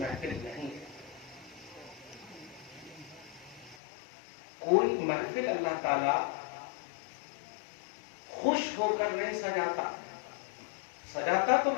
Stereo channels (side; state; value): right; drops out; at 3.8 s